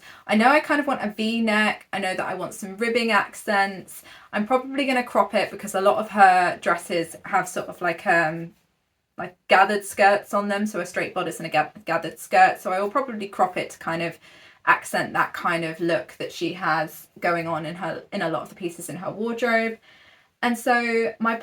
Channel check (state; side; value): identical; both; correlation 1.00